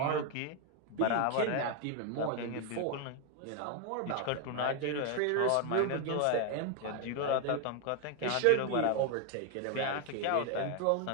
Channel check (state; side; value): different; both; correlation 0.01